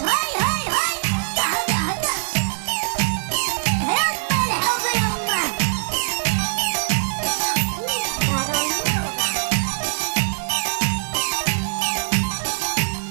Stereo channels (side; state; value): left; silent; 64 dB below the other